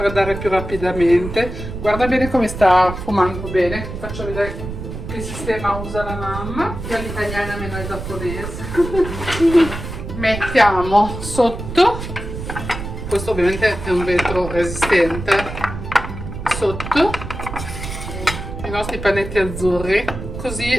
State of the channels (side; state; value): right; noise; rumble, 8 dB below the sound